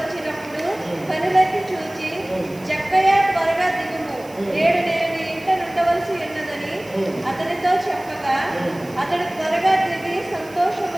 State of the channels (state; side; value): noise; right; hiss, 23 dB below the sound